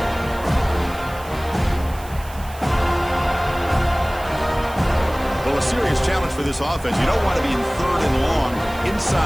Well, a serious challenge for this offense. You don't want to be in third and long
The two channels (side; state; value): right; noise; hiss, 19 dB below the sound